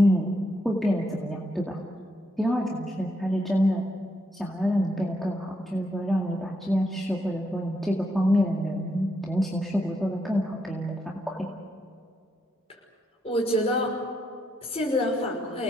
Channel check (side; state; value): both; normal; correlation 0.79